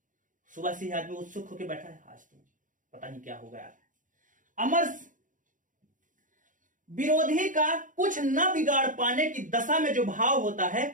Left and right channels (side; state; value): left; late; 0.38 ms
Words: सुबह से ही आदमी उत्सुक होकर बैठा है, आज तो पता नहीं क्या होगा यार। अमर्ष, विरोधी का कुछ न बिगाड़ पाने की दशा में जो भाव होता है